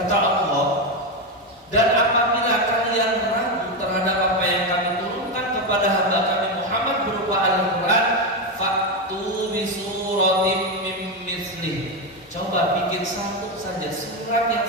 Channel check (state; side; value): normal; both; correlation 0.10